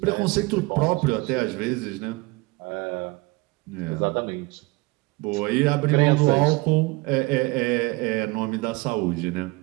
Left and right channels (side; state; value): left; quieter; 23.9 dB